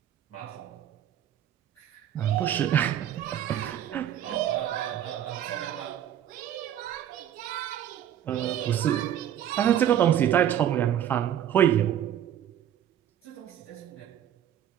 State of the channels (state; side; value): quieter; left; 10.6 dB